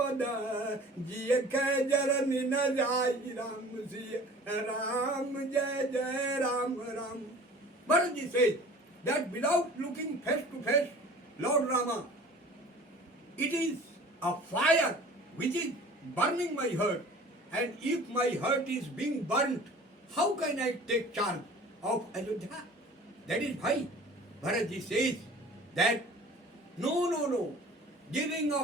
जिय कह जरन न जाई राम सिय राम जय जय Ram Ram. Bharatji says that without looking face to face, Lord Rama, it is a fire which is burning my heart, and if my heart is being burnt, how can I take charge of Ayodhya? That is why Bharatji says that no, giving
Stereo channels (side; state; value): both; normal; correlation 0.45